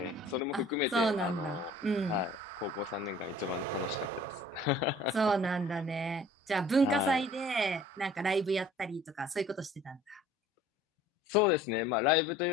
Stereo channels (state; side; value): normal; both; correlation 0.50